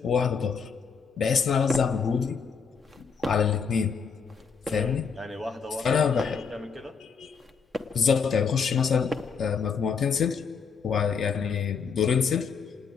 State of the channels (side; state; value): right; quieter; 5.9 dB